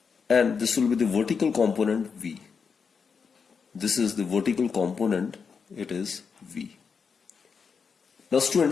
and this will be the vertical component V. This is the vertical component, it is V. Now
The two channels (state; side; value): quieter; right; 5.8 dB